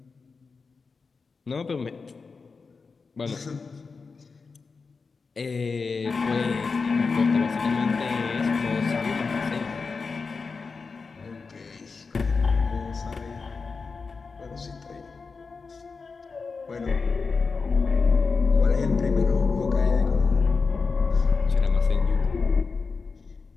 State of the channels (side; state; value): right; quieter; 4.7 dB